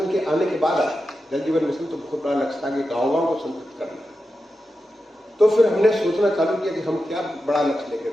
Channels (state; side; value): normal; both; correlation 0.90